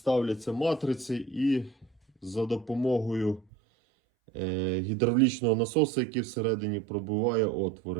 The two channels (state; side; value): drops out; left; at 3.5 s